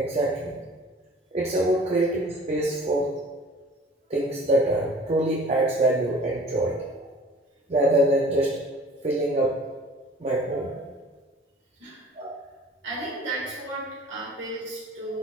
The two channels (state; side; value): normal; both; correlation 0.48